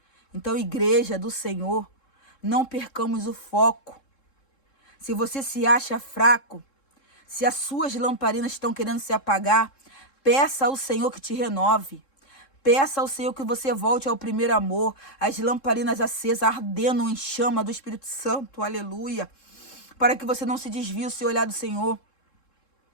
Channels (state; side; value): late; right; 3.7 ms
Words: Então, igreja do Senhor, não percamos o foco. Se você se acha fraco, se as suas lamparinas estão querendo se apagar, peça ao Senhor que te renove. Peça ao Senhor que você volte ao primeiro amor, as lamparinas acesas, ardendo em chama do Espírito Santo, aleluia. Para que você não se desvie o seu olhar do Senhor.